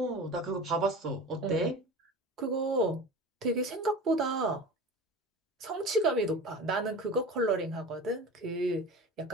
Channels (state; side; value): normal; both; correlation 0.33